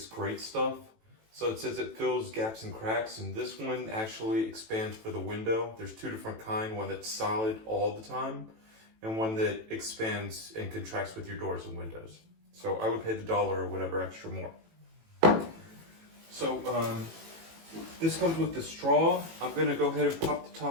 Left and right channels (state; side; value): late; left; 18 ms